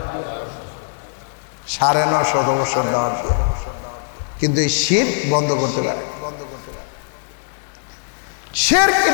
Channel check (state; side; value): silent; right; 65 dB below the other